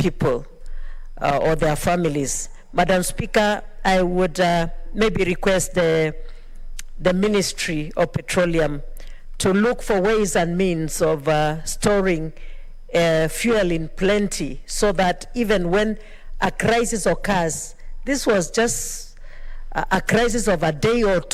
or their families. Madam Speaker, I would maybe request the Ministry of Petroleum to look for ways and means of storing fuel in plenty, so that even when a crisis occurs, this was just a crisis of a day or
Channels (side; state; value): both; identical; correlation 1.00